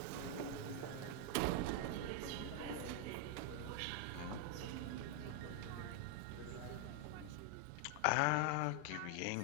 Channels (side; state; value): both; different; correlation 0.00